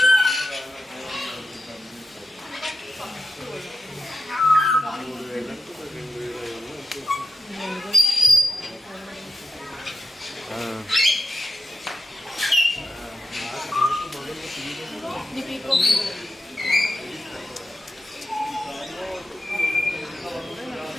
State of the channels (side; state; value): both; normal; correlation 0.89